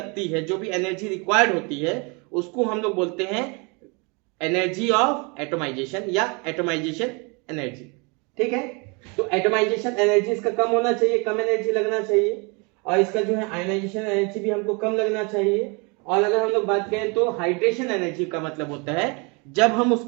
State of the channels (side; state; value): left; quieter; 31.1 dB